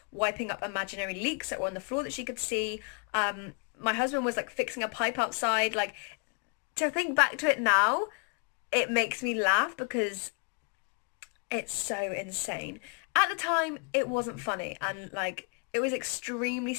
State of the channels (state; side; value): quieter; right; 36.1 dB